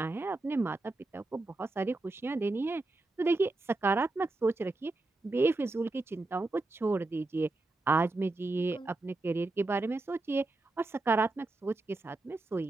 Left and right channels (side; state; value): left; quieter; 3.0 dB